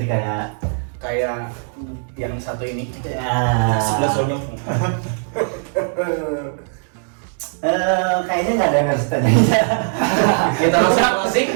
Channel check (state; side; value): silent; left; 66 dB below the other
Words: kayak Kayak yang satu ini. ya. Sebelah sonyong. Kayaknya nggak ada yang harus tanya. Kita langsung closing.